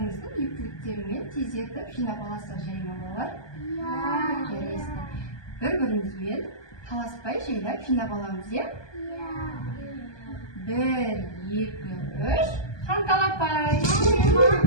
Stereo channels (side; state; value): right; late; 1.2 ms